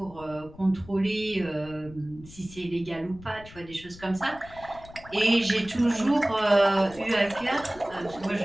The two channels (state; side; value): noise; left; rumble, 19 dB below the sound